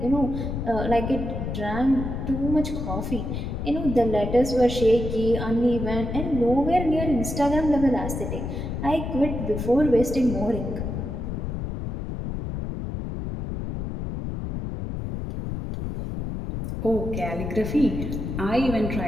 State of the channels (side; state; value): left; noise; rumble, 4 dB below the sound